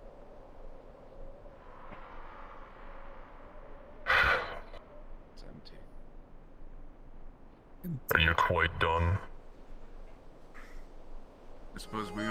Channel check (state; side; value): identical; both; correlation 1.00